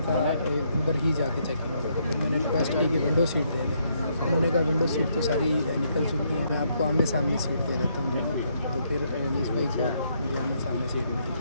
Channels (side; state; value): both; inverted; correlation -0.73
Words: था उधर ही जाके चेकिंग होगा। तो फिर मैंने रिक्वेस्ट की कि विंडो सीट दे दें। उन्होंने कहा विंडो सीट तो सारी निकल चुकी है, मैं आपको आमने सामने सीट दे देता हूँ दोनों को। तो फिर अनीस भाई को आमने सामने सीट